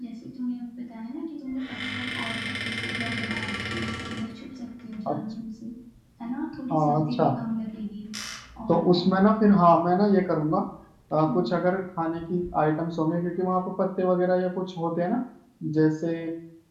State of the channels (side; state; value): both; identical; correlation 1.00